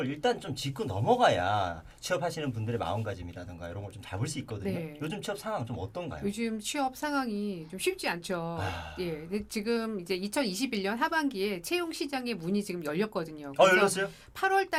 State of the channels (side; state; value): both; identical; correlation 1.00